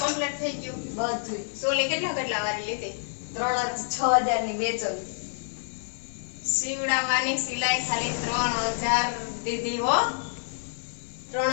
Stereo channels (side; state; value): right; silent; digital silence